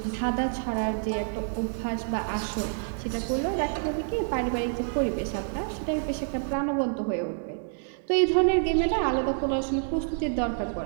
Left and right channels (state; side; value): silent; left; digital silence